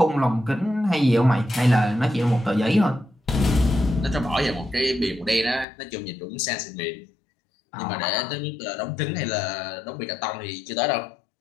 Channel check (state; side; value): drops out; right; at 5.7 s